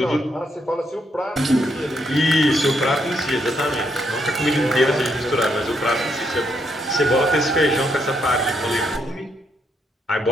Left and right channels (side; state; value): both; normal; correlation 0.76